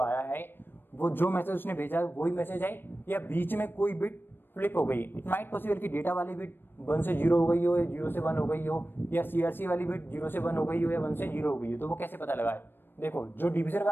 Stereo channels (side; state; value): right; late; 0.097 ms